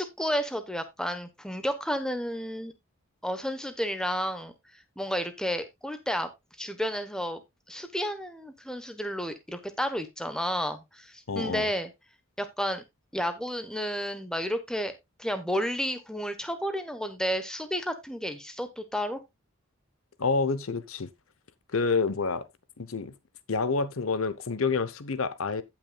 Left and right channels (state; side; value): normal; both; correlation 0.44